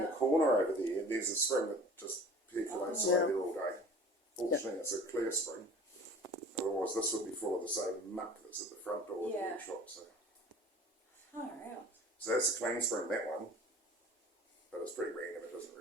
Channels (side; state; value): both; normal; correlation 0.44